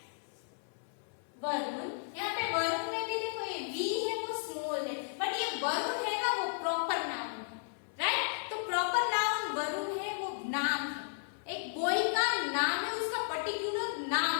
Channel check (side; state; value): right; silent; 55 dB below the other